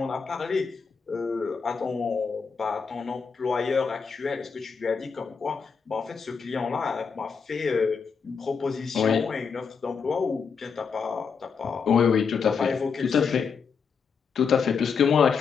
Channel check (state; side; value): quieter; right; 5.8 dB